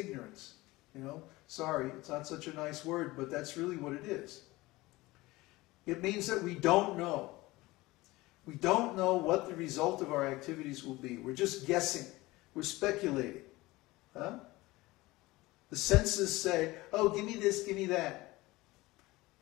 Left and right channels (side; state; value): right; quieter; 20.0 dB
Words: You know, sorry, it's not such a nice word, but that's really what it is. It means that we don't know. We don't know what the result of our activities will be. We're just guessing. We're speculating. The senses say, oh, give me this, give me that.